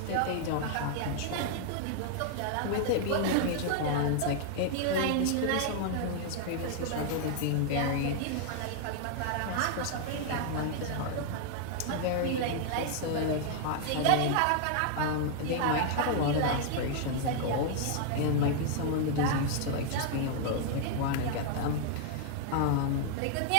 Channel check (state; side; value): different; both; correlation 0.00